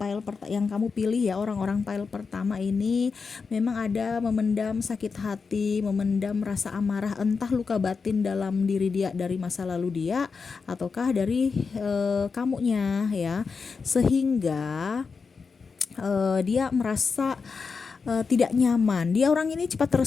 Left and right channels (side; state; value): right; quieter; 5.1 dB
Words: yang kamu pilih ya, orang-orang pile pertama ini memang ada memendam sakit hati, memendam rasa amarah, entah luka batin dalam diri dia dari masa lalu dia ataukah dari kamunya ya. Sehingga dia merasa tidak nyaman. Dia orang ini cepat